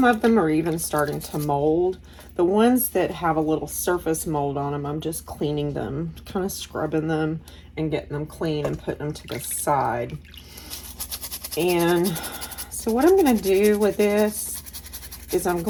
of them are even starting to mold. The ones that have a little surface mold on them, I'm just cleaning them, kind of scrubbing them and getting them clean and putting them to the side. And so what I'm going to do with this is I'm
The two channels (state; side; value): identical; both; correlation 1.00